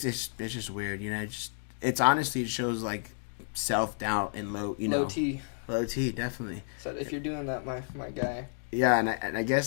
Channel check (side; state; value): right; silent; 57 dB below the other